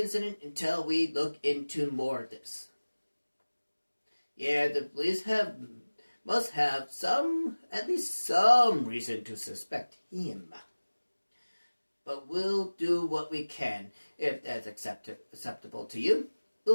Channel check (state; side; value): inverted; both; correlation -1.00